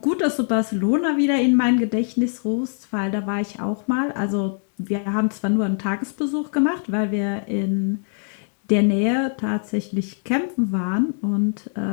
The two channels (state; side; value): silent; right; 63 dB below the other